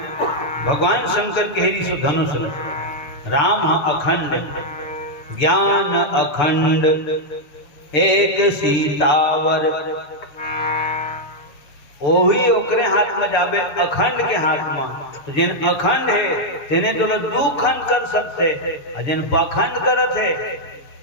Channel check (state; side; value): late; right; 6.8 ms